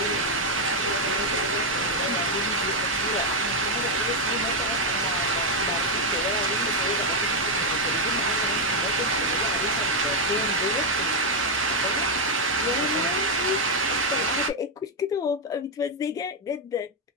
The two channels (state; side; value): normal; both; correlation 0.02